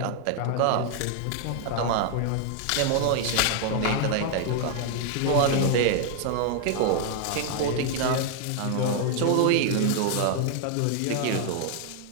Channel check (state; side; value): different; both; correlation 0.00